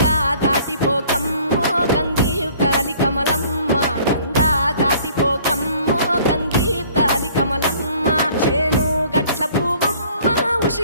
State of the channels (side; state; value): both; inverted; correlation -0.54